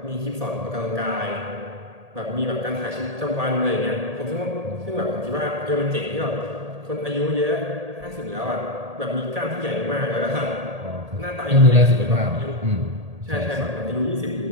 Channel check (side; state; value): left; late; 1.8 ms